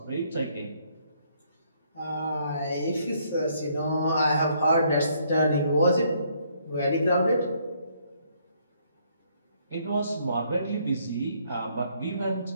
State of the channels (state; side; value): inverted; both; correlation -0.68